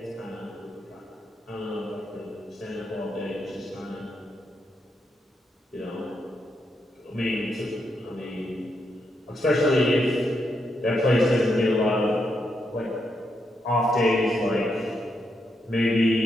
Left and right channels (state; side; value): normal; both; correlation 0.81